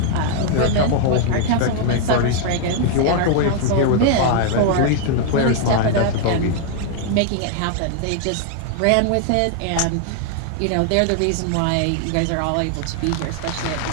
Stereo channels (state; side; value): different; both; correlation 0.00